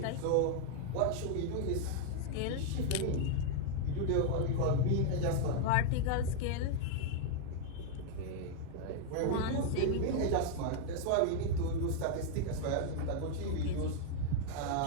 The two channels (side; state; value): both; different; correlation 0.00